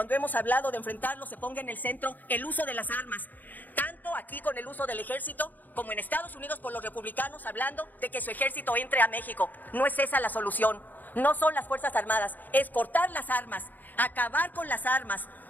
hemos hablado de enfrentarlo se ponga en el centro el uso de las armas, tanto aquí con el uso del ejército como en Estados Unidos por los republicanos hablando de que su ejército entre a México. No es esa la solución, no son las Fuerzas Armadas, es cortar las armas, acabar con las armas,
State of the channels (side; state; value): right; late; 0.085 ms